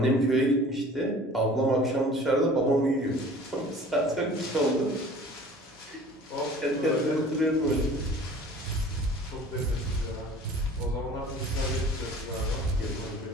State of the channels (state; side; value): normal; both; correlation 0.46